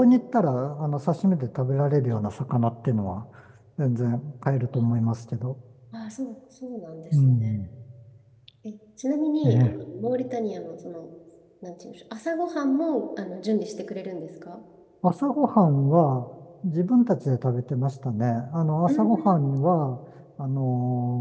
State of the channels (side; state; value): both; identical; correlation 1.00